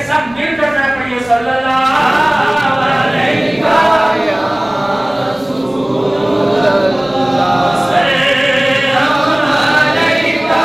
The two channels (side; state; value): left; noise; rumble, 28 dB below the sound